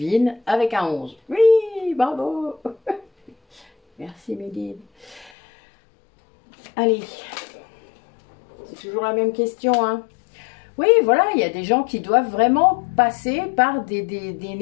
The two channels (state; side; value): drops out; right; at 5.3 s